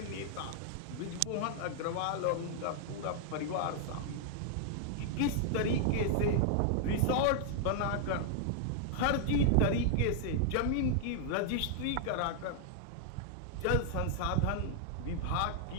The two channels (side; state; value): both; different; correlation -0.01